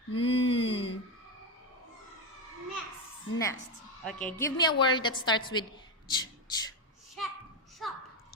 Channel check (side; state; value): both; normal; correlation 0.11